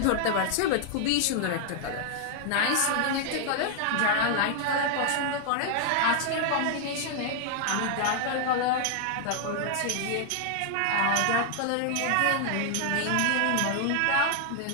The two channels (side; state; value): both; different; correlation 0.00